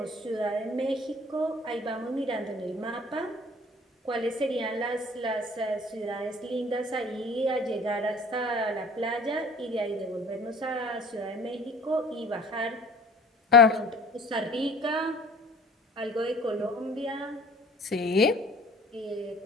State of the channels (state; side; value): normal; both; correlation 0.48